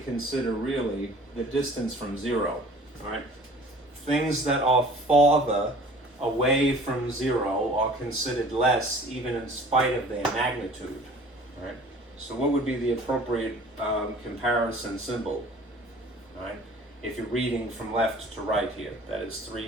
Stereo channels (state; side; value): normal; both; correlation 0.48